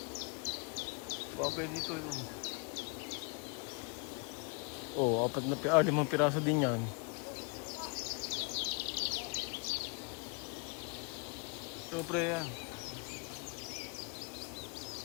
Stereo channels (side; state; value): right; quieter; 32.2 dB